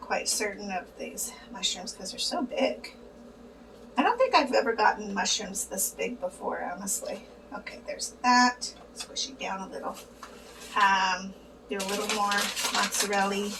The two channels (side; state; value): both; identical; correlation 1.00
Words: certain of these mushrooms because they're so big. I don't think I've ever gotten mushrooms this big before, honestly. Okay, there's that. Squish it down a little. Do a little more mozzarella